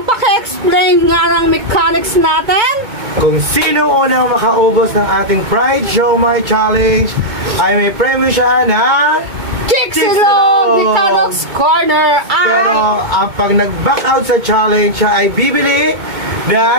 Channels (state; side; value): late; left; 2.2 ms